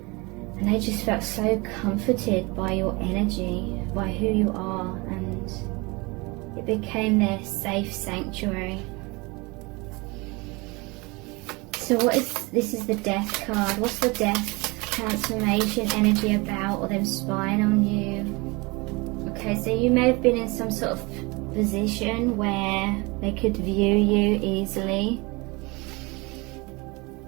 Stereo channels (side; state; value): left; quieter; 26.1 dB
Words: And they just felt so comforted by your energy, by who you are, and it became their safe sanctuary. So this is the death card. What's the death transformation energy about, or them spying on you? Okay, so you may have been in some sort of position where they could view you easily.